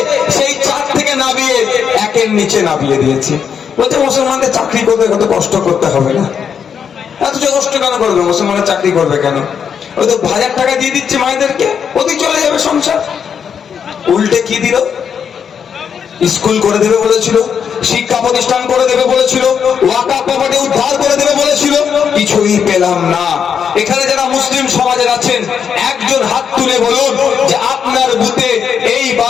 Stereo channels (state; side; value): quieter; right; 7.3 dB